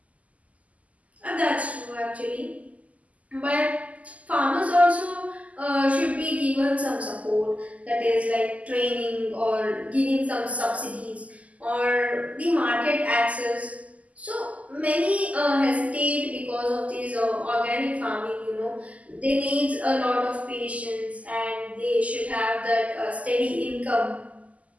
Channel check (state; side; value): late; left; 0.071 ms